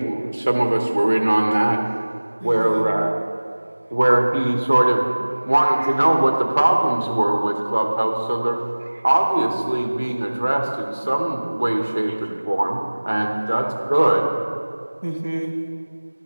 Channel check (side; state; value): both; inverted; correlation -1.00